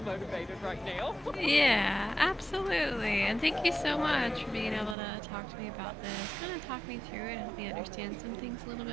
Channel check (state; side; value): drops out; left; at 5.0 s